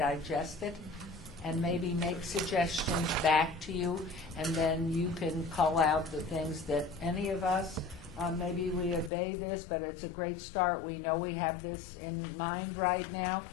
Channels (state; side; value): drops out; right; at 9.1 s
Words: it and maybe make suggestions back to you, and then you can call out the things that any of us, maybe we obey this, but it's a great start. We know we have this in mind right now.